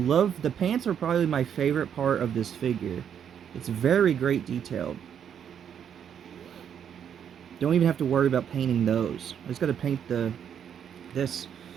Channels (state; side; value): quieter; left; 8.5 dB